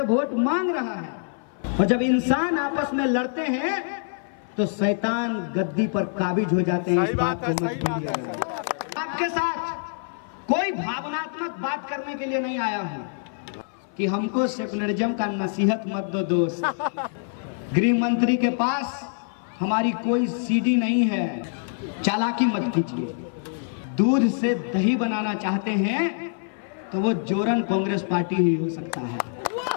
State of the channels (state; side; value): silent; right; 56 dB below the other